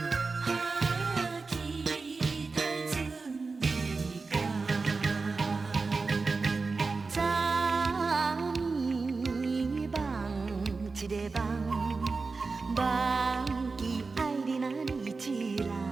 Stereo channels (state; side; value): quieter; left; 4.1 dB